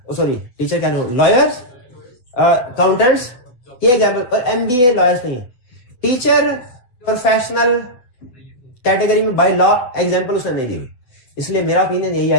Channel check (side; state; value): right; late; 7.9 ms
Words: सॉरी टीचर क्या नहीं, लॉयर्स, अकाउंटेंट्स, ये एग्जाम्पल, और एमबीए लॉयर्स नहीं है। टीचर प्रोफेशनल कैटेगरी में बाय लॉ एग्जाम्पल उसने नहीं दी हुई, इसलिए मेरा ओपिनियन यही